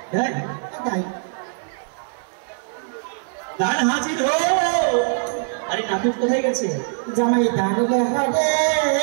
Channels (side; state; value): left; silent; 60 dB below the other